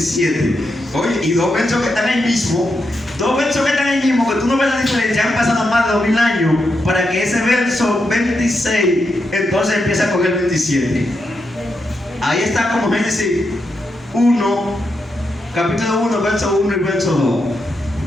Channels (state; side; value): normal; both; correlation 0.84